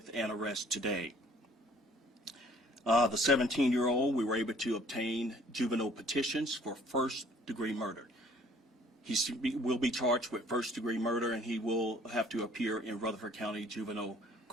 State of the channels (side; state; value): both; normal; correlation 0.57